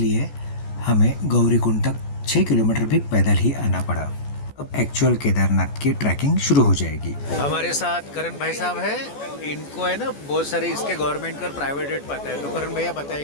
हमें गौरीकुंड तक 6 किलोमीटर भी पैदल ही आना पड़ा। अब एक्चुअल केदारनाथ की ट्रैकिंग शुरू हो जाएगी। हमारे साथ करण भाई साहब है, इनको है ना बहुत सारे इसके गवर्नमेंट का प्राइवेट रेट पता है, तो करण भैया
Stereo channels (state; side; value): late; right; 14 ms